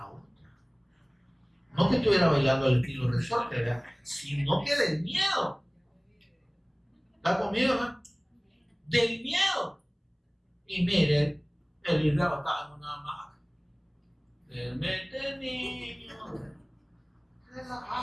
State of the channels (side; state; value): both; identical; correlation 1.00